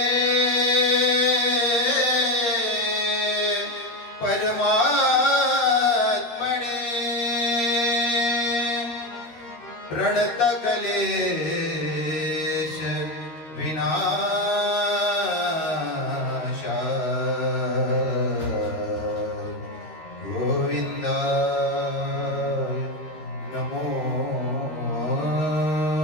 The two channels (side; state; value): right; late; 13 ms